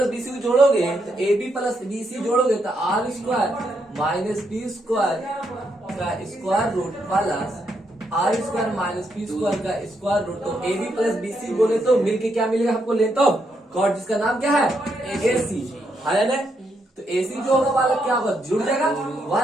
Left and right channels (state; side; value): normal; both; correlation 0.79